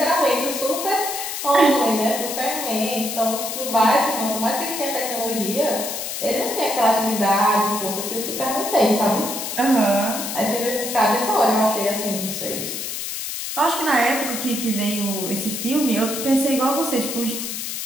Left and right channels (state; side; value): noise; left; hiss, 5 dB below the sound